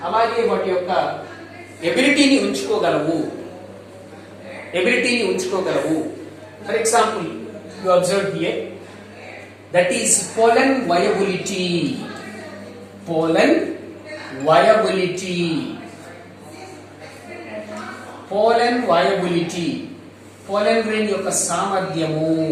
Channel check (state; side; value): identical; both; correlation 1.00